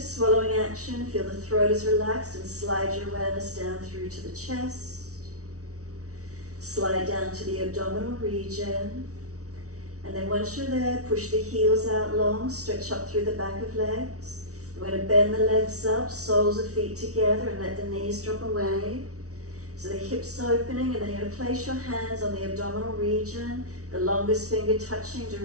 action. Feel the throat is relaxed and slide your awareness down through to the chest. Slide down to the abdominal region. And then once you're there, push the heels out long, stretch up through the back of legs. We're going to bend the legs up, soles of feet together, and let the knees drop away. So the hips opening, and then you're going to place your hands on the abdominal region, the longest finger touching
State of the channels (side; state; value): left; late; 0.65 ms